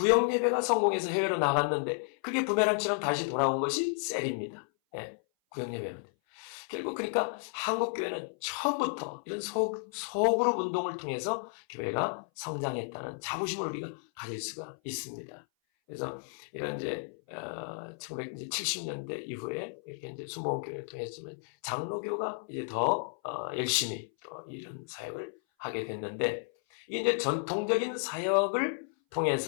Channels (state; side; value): silent; right; 56 dB below the other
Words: 예배가 성공해서 해외로 나갔는데 그게 부메랑처럼 다시 돌아온 것이 셀입니다. 구역 예배는. 결국 그러니까 한국 교회는 처음부터 이런 소그룹 운동을 통해서 교회가 성장했다는 자부심을 우리가 가질 수가 있습니다. 그래서 이런 이제 1970년대 이후에 이렇게 이제 순복음교회를 통했지만 장로교가 이제 더 열심히 또 이런 사역을 하게 됐는데, 이게 이제 전통적인 사역을